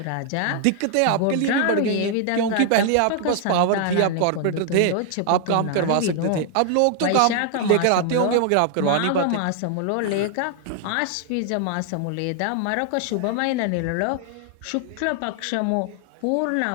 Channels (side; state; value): both; different; correlation 0.00